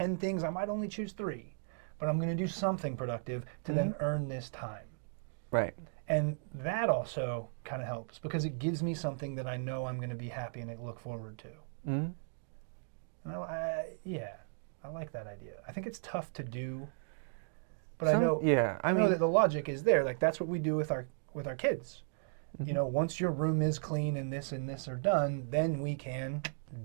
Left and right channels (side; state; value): left; silent; digital silence